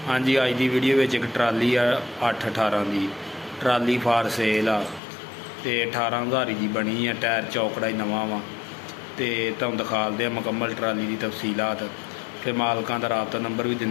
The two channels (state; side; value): drops out; right; at 5.0 s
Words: हाँ जी, अज की वीडियो में एक ट्राली आ 8-18 की ट्राली फार सेल आ तो 18,000 की बनी है। टायर चौकड़ा ही नवा वा तो तुम दिखाते हैं मुकम्मल ट्राली की तफसीलात, फिर मालकों का राबता नंबर भी